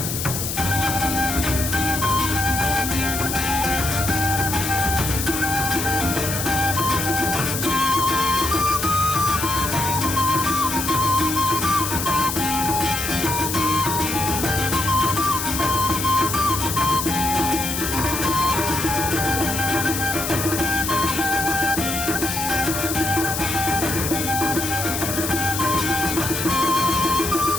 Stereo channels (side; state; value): left; noise; hiss, 3 dB below the sound